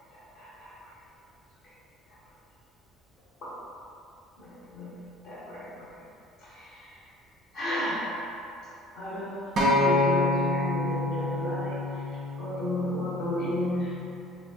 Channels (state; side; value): normal; both; correlation 0.48